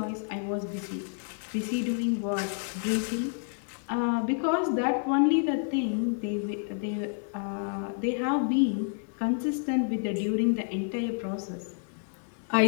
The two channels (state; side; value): silent; right; 58 dB below the other